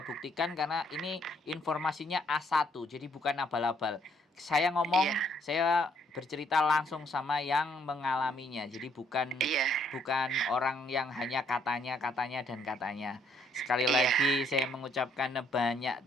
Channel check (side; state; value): both; normal; correlation 0.68